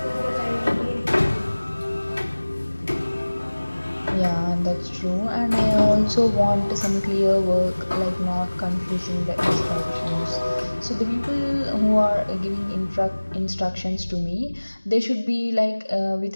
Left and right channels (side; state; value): both; inverted; correlation -1.00